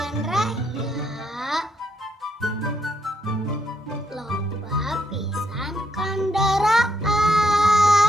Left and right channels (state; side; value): normal; both; correlation 0.77